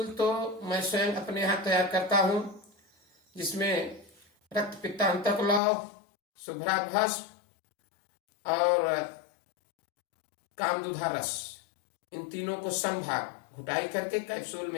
तो मैं स्वयं अपने यहाँ तैयार करता हूँ, जिसमें रक्त पित्तांतक लौह, शुभ्रा भस्म और कामदुधा रस, इन तीनों को समभाग घुटाई करके कैप्सूल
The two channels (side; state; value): right; drops out; at 5.6 s